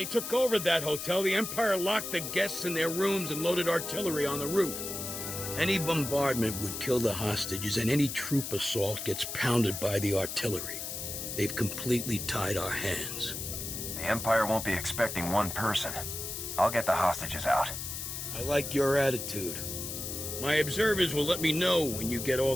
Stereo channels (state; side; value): noise; left; hiss, 6 dB below the sound